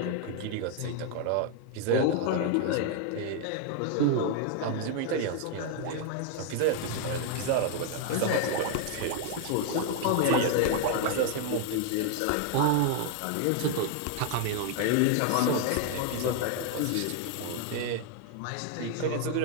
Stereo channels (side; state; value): both; different; correlation 0.00